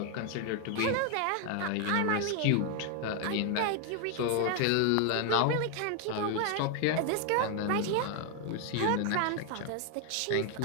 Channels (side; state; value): both; different; correlation 0.00